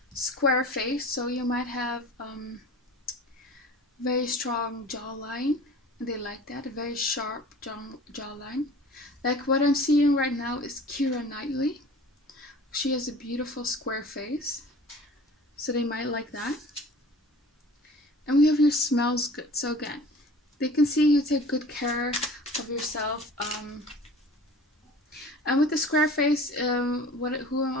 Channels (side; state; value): both; normal; correlation 0.43